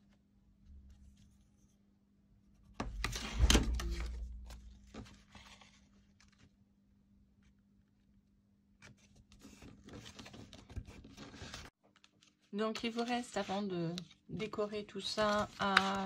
Donc il vous reste, avant de décorer tout ça,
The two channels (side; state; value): both; identical; correlation 1.00